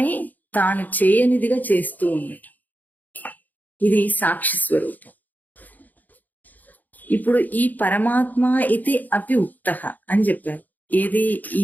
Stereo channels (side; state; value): right; late; 0.083 ms